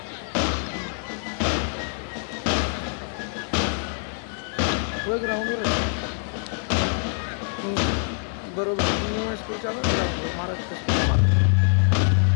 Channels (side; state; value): right; silent; 62 dB below the other